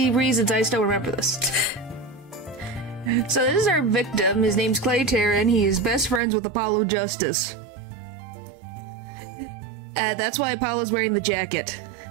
reasons, I still remember this. So this is our victim. His name's Clay Taryn. He is best friends with Apollo Justice. That's why Apollo's wearing the jacket.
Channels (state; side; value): drops out; left; at 6.2 s